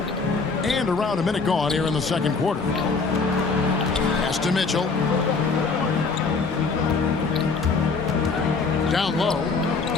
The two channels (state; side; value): quieter; right; 4.4 dB